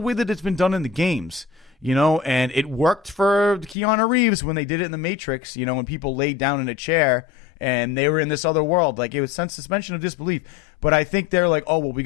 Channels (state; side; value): drops out; right; at 3.8 s